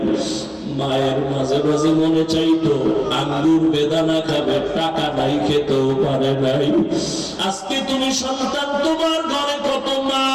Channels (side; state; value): both; identical; correlation 1.00